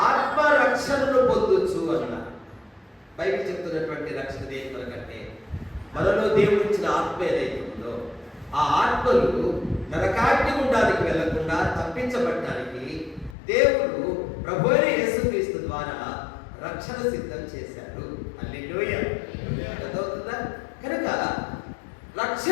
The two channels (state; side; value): drops out; right; at 13.4 s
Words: ఆత్మరక్షణను పొందొచ్చు అన్నారు. బైబిల్ చెప్తున్నటువంటి రక్షణ దేని కొరకంటే మనలో దేవుడు ఇచ్చిన ఆత్మ ఏదైతే ఉందో ఆ ఆత్మలు నరకాగ్ని గుండానికి వెళ్లకుండా తప్పించబడటానికి దేవుడు ప్రభువైన యేసుక్రీస్తు ద్వారా రక్షణ సిద్ధం చేశారు. హల్లెలూయా. అర్థమవుతుందా? కనుక